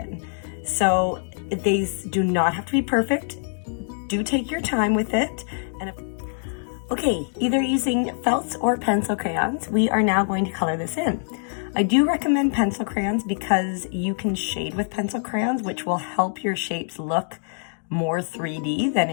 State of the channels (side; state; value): right; silent; digital silence